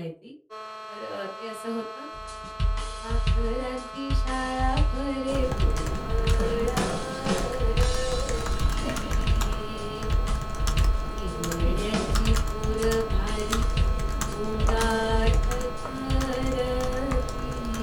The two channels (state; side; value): identical; both; correlation 1.00